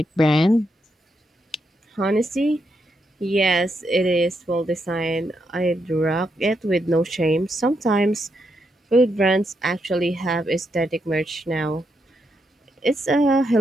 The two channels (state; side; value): normal; both; correlation 0.81